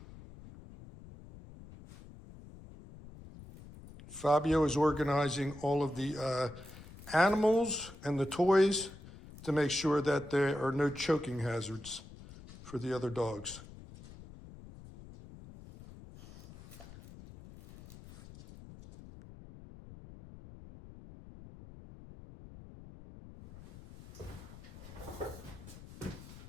Fabio is organizing all of the animals and the toys to make sure that there are no choking hazards for the other dogs.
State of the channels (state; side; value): noise; left; rumble, 17 dB below the sound